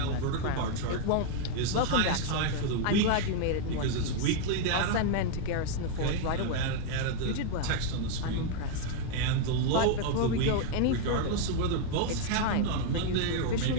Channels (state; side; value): different; both; correlation 0.00